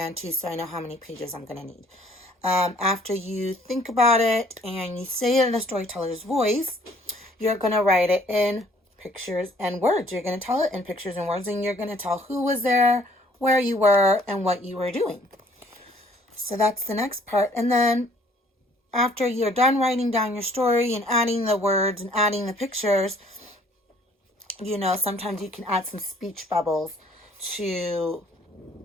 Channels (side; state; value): both; normal; correlation 0.59